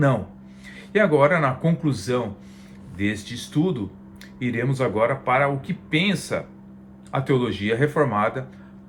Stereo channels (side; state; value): both; identical; correlation 1.00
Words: E agora, na conclusão deste estudo, iremos agora para o que pensa a teologia reformada